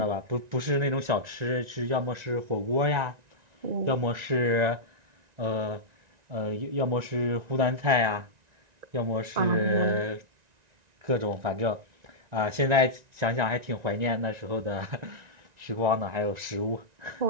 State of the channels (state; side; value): late; left; 1.9 ms